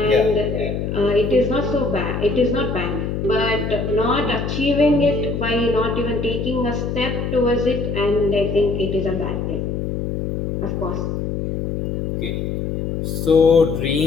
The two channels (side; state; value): left; noise; hum, 3 dB below the sound